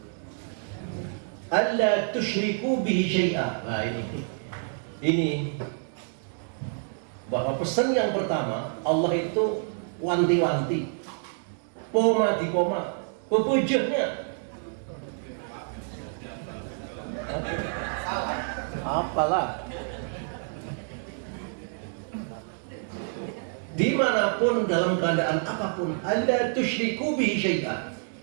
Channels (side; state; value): left; silent; 59 dB below the other